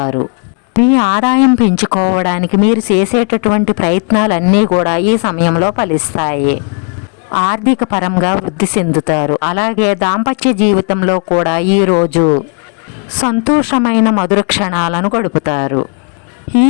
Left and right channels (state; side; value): quieter; right; 39.1 dB